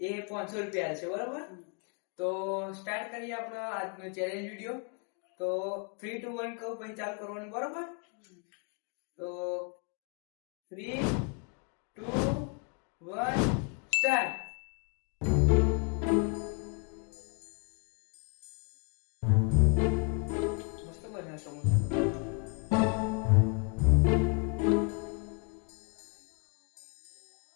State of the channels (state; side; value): quieter; right; 34.4 dB